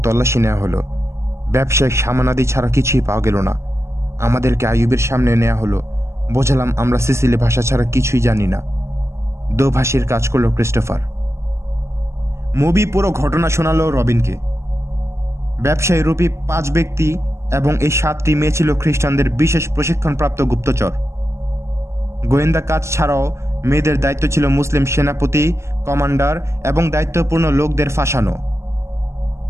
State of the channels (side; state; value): left; late; 0.13 ms